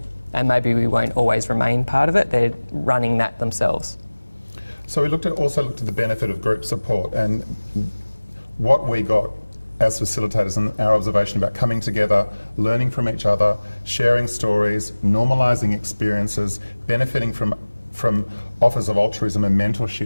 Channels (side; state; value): both; inverted; correlation -1.00